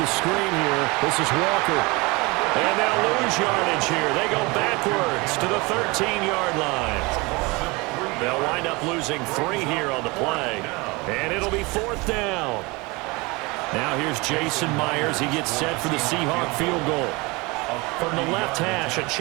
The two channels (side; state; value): left; quieter; 25.2 dB